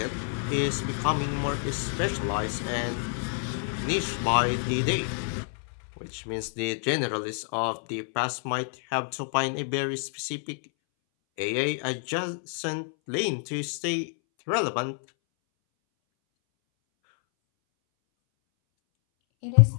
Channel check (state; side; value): silent; right; 59 dB below the other